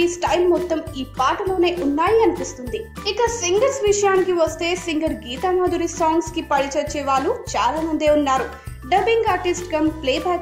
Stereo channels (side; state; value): both; identical; correlation 1.00